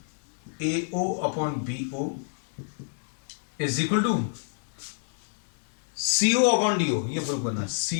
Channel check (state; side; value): silent; right; 59 dB below the other